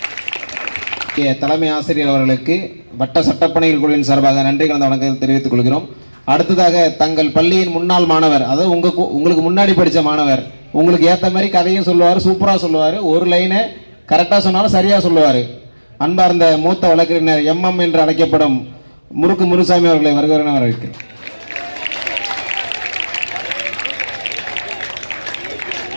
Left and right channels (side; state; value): both; inverted; correlation -1.00